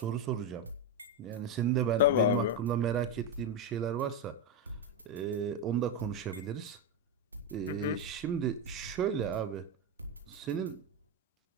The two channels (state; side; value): normal; both; correlation 0.08